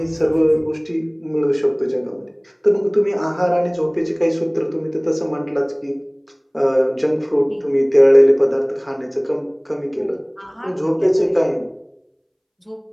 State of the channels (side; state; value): both; identical; correlation 1.00